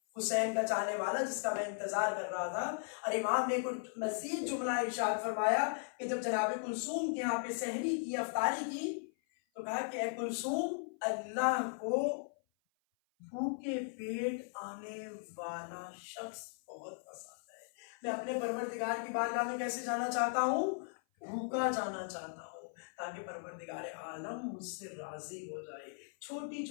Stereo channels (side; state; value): right; silent; 53 dB below the other